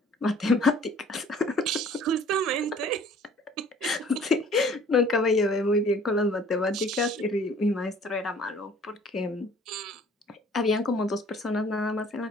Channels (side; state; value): both; normal; correlation 0.54